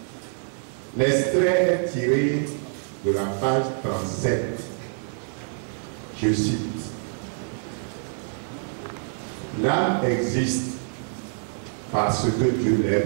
L'extrait est tiré de la page 37. Je cite. L'âme existe parce que Dieu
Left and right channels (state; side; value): silent; left; digital silence